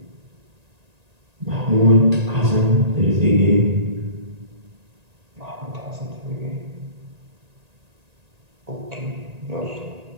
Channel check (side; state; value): left; late; 1.8 ms